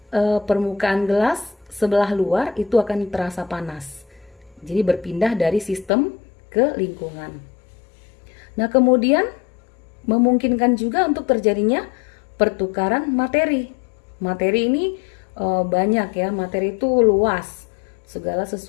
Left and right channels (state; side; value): drops out; right; at 5.9 s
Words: permukaan gelas sebelah luar itu akan terasa panas. Jadi berpindah dari sistem ke lingkungan. Nah, kemudian memungkinkan juga untuk terjadinya pertukaran materi. Materi ini banyak ya, materi itu luas. Segala